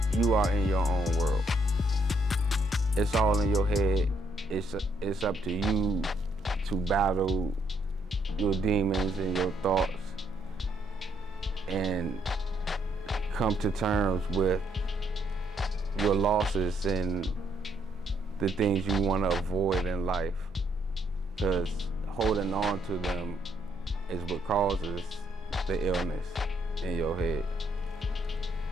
you are in your own world. It's all in your head. It's up to you to battle your demons and your thoughts and come to terms with your losses and the things you want to avoid in life, because holding on to them is what causes the illness in your head.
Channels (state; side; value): normal; both; correlation 0.72